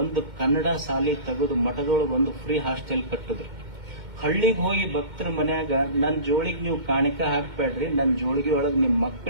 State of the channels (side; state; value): left; late; 2.1 ms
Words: ಕನ್ನಡ ಶಾಲೆ ತೆಗೆದು ಮಠದೊಳಗೆ ಒಂದು ಫ್ರೀ ಹಾಸ್ಟೆಲ್ ಕಟ್ಟಿದ್ರು. ಹಳ್ಳಿಗೆ ಹೋಗಿ ಭಕ್ತರ ಮನ್ಯಾಗ ನನ್ನ ಜೋಳಿಗೆ ನೀವು ಕಾಣಿಕೆ ಹಾಕ್ಬೇಡ್ರಿ, ನನ್ನ ಜೋಳಿಗೆ ಒಳಗೆ ನಿಮ್ಮ